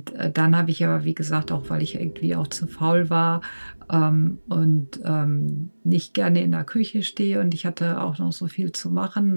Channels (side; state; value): both; inverted; correlation -1.00